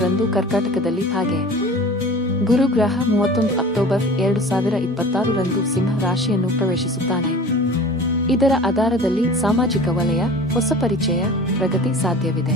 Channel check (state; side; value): normal; both; correlation 0.40